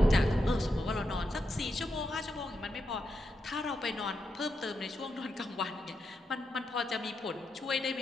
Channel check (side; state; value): both; normal; correlation 0.85